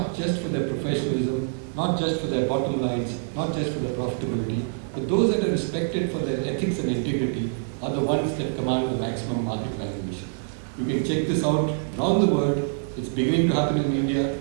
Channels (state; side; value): silent; left; digital silence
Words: just for their professionalism, not just for their bottom lines, not just for their profitability, but those that are respected for their ethics and integrity are the ones that command the maximum market valuation. You can check this out around the world. It's beginning to happen in India.